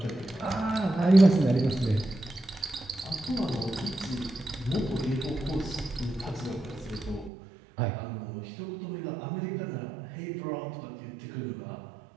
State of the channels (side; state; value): left; drops out; at 7.3 s